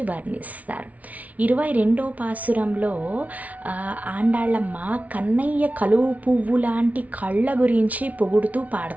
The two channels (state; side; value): late; left; 0.070 ms